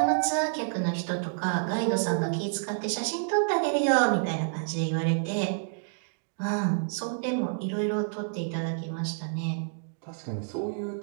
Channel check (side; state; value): left; silent; digital silence